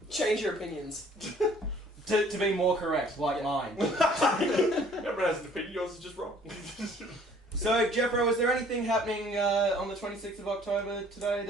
Change your opinions. To be more correct, like mine. everyone has an opinion, yours is just wrong. So, Jeffro, is there anything happening on the 26th of October today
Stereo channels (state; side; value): normal; both; correlation 0.56